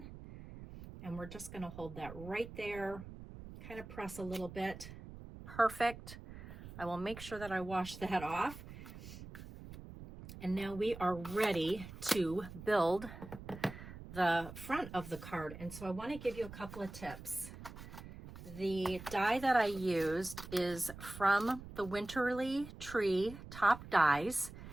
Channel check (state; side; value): noise; right; rumble, 13 dB below the sound